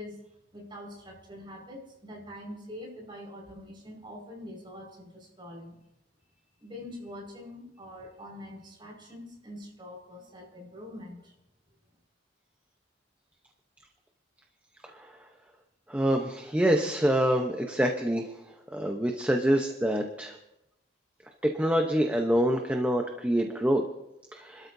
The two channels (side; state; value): both; normal; correlation 0.81